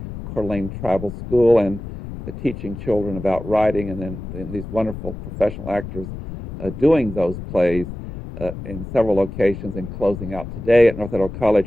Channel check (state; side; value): noise; left; rumble, 10 dB below the sound